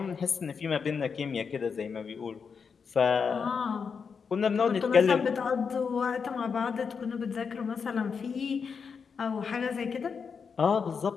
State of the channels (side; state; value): right; quieter; 5.9 dB